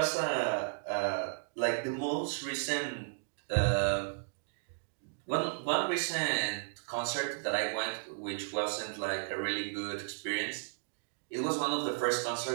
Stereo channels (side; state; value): left; silent; digital silence